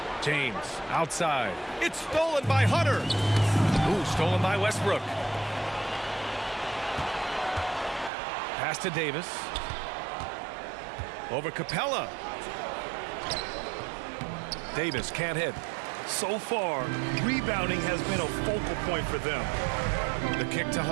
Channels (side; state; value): left; drops out; at 8.1 s